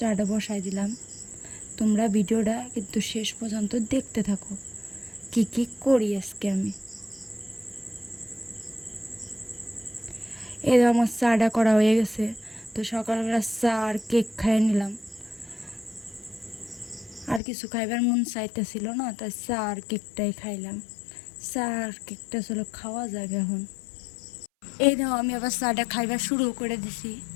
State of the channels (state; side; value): drops out; right; at 17.4 s